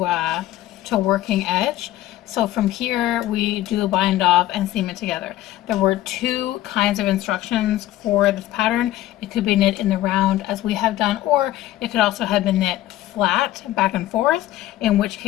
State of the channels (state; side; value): quieter; right; 14.5 dB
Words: working edge. So from here, we do a bind off and seam it together. There were 2 kinds of instructions for this pattern. It could be knit in the round as we have done, or it could also have been knit flat back and forth, in which